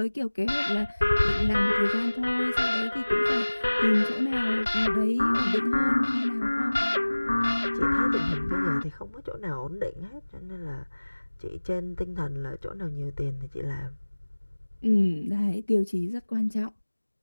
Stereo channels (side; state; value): both; inverted; correlation -1.00